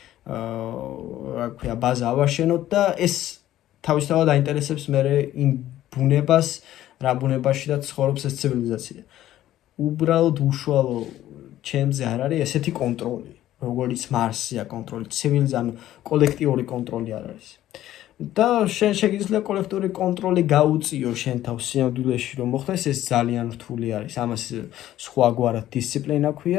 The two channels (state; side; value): quieter; right; 13.4 dB